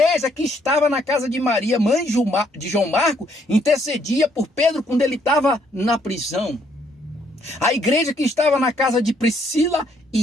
que estava na casa de Maria, mãe de João Marco, intercedia por Pedro quando ele estava na prisão. A igreja que estava na casa de Priscila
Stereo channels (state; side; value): normal; both; correlation 0.69